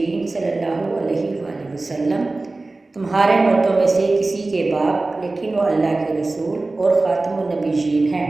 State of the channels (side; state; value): left; quieter; 3.2 dB